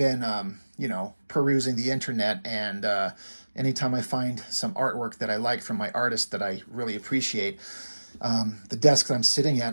perusing the internet, and anytime I find some artwork that I like from my artist that I really appreciate, the desk that I'm sitting at,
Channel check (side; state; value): both; inverted; correlation -1.00